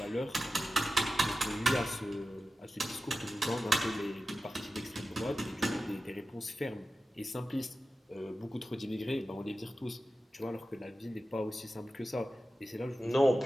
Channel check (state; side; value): normal; both; correlation 0.93